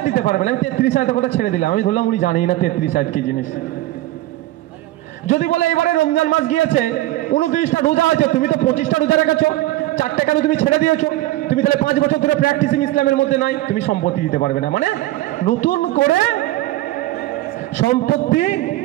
দিতে পারবে না। আমি 33 আয়াতের কথা ছেড়ে দিলাম, আমি ধরলাম উনি জানেই না 33 আয়াত কি জিনিস। যদি বলে এবারে রমজান মাস গিয়েছে, 29টা রোজা আছে, তুমি তো 25টা রোজা রেখেছো, 4টা কেন তুমি ছেড়ে দিয়েছো? তুমি তাহলে 5 বছর ধরে প্র্যাকটিসিং ইসলামের মধ্যে নাই, তুমি সম্পত্তি দিতে পারবে না। মানে নতুন করে সম্পত্তি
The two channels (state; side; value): quieter; left; 16.6 dB